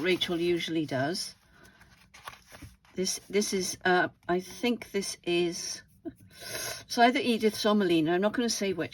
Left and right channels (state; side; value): identical; both; correlation 1.00